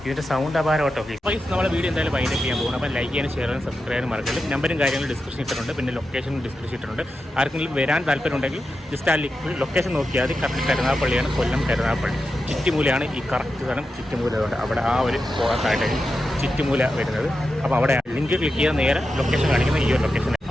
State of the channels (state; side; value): normal; both; correlation 0.90